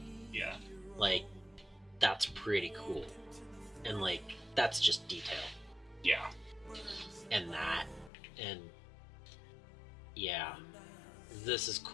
Yeah. Like, that's pretty cool. And like, that's just detail. Yeah. And that, and yeah, this is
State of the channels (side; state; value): right; drops out; at 8.1 s